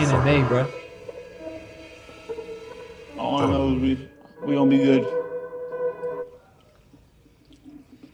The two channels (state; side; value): identical; both; correlation 1.00